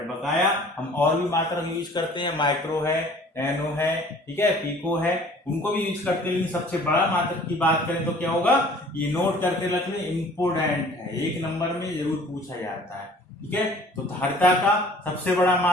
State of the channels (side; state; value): both; normal; correlation 0.50